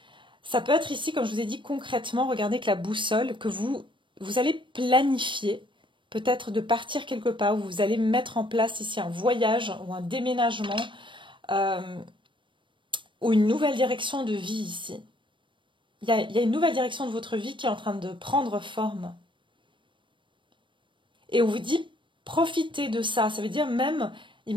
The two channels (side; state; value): left; late; 0.24 ms